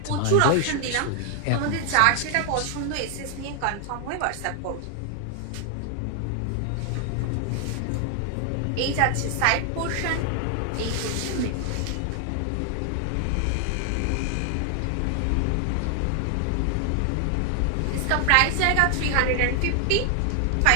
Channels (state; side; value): different; both; correlation 0.00